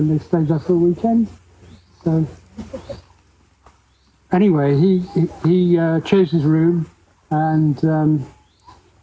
they stayed there for a weekend. So anyway, he chose his room, and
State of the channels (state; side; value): identical; both; correlation 1.00